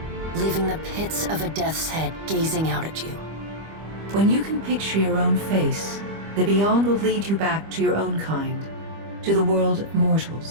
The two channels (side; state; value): left; late; 25 ms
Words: leaving the pits of a death's head gazing out at you. When you can picture your own face, the Beyond will lead you back to your own kind, to the world of